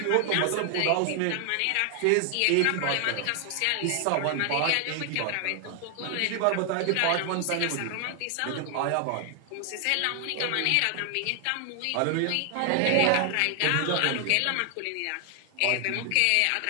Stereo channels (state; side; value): different; both; correlation 0.00